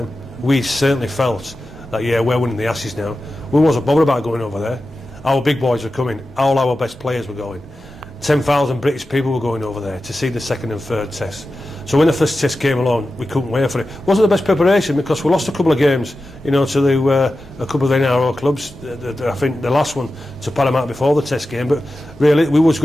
We certainly felt that, yeah, we're winning the Ashes now. We wasn't bothered about going over there. Our big boys were coming. All our best players were going. 10,000 British people were going over there to see the second and third test. So when the first test came along, we couldn't wait for it. It wasn't the best preparation because we lost a couple of games, you know, to a couple of the NRO clubs. I think the last one to Panama before the test game, but really we was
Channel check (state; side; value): normal; both; correlation 0.93